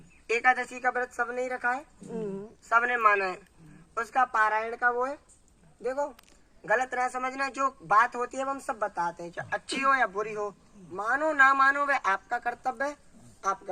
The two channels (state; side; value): identical; both; correlation 1.00